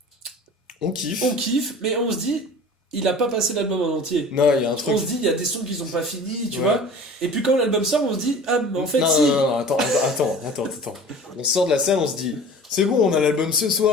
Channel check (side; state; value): both; normal; correlation 0.41